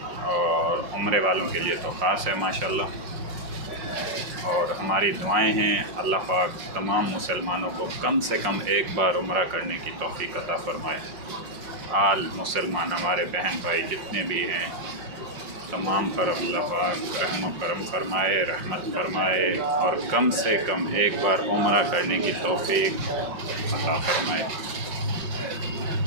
اور عمرے والوں کے لیے تو خاص ہے ماشاءاللہ۔ اور ہماری دعائیں ہیں اللہ پاک تمام مسلمانوں کو کم سے کم ایک بار عمرہ کرنے کی توفیق عطا فرمائے۔ آل مسلمان ہمارے بہن بھائی جتنے بھی ہیں تمام پر اللہ پاک رحم و کرم فرمائے، رحمت فرمائے، اور کم سے کم ایک بار عمرہ کرنے کی توفیق عطا فرمائے۔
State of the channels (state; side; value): late; left; 5.5 ms